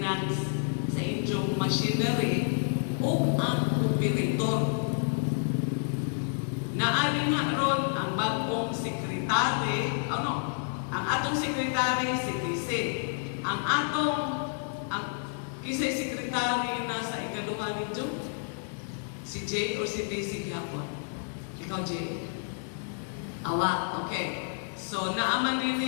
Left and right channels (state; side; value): silent; right; 58 dB below the other